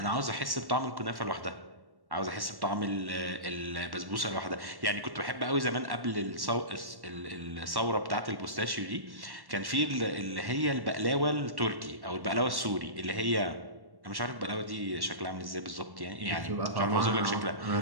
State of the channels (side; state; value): left; late; 1.1 ms